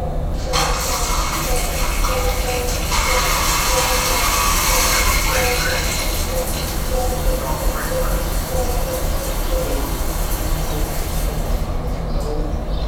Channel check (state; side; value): identical; both; correlation 1.00